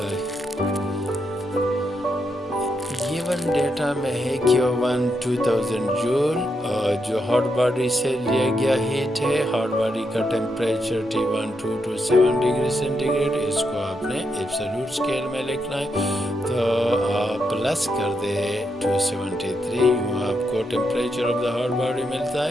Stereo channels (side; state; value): both; normal; correlation 0.82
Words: گیون ڈیٹا میں ہے Q1 2000 جول جو ہاٹ باڈی سے لیا گیا ہیٹ ہے، ہاٹ باڈی کا temperature T1 2 to 7 degree centigrade, اس کو آپ نے ایبسولوٹ اسکیل میں لکھنا ہے، تو آپ پلس کر دے 273 یوں آپ کو temperature of the hot body ملتا